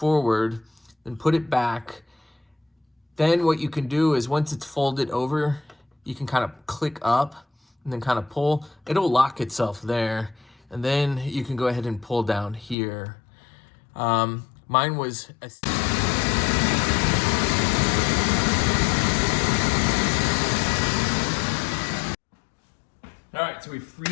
then put it back. Then what you can do is once it's folded over, you can kind of click up and then kind of pull. It'll lock itself there. And then you can go ahead and pull down here. Mine was all right, so we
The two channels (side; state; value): right; drops out; at 12.8 s